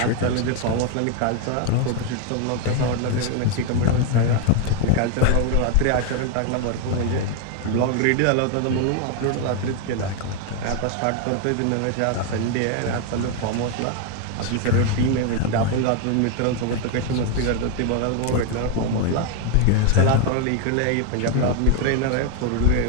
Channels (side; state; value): both; different; correlation 0.01